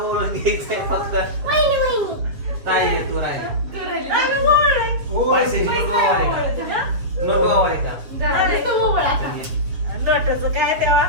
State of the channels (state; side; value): late; left; 7.1 ms